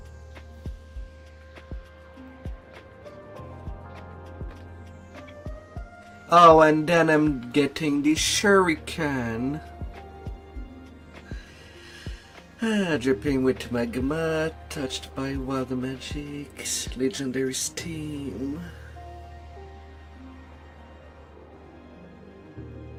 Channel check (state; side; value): identical; both; correlation 1.00